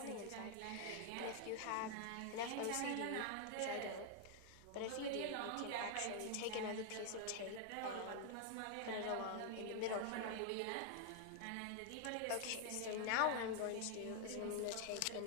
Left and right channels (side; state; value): both; different; correlation 0.00